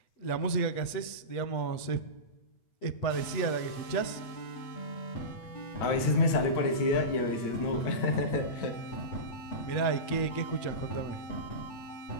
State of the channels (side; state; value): right; late; 8.2 ms